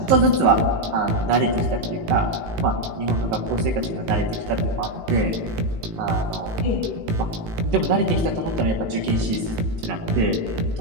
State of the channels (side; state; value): left; late; 18 ms